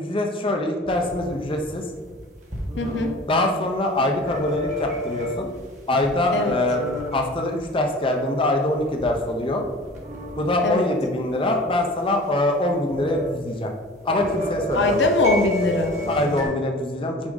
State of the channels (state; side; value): normal; both; correlation 0.41